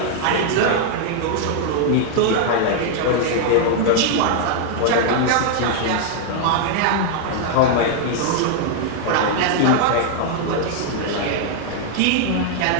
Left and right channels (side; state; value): both; different; correlation 0.00